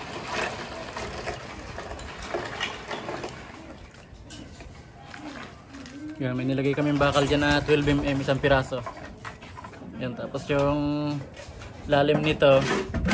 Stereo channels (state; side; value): identical; both; correlation 1.00